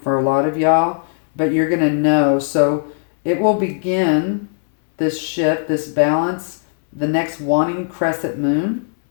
for a lot of y'all, but you're going to know. So it will begin this shift, this balance, the next wanting crescent moon.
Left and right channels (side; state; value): right; silent; 65 dB below the other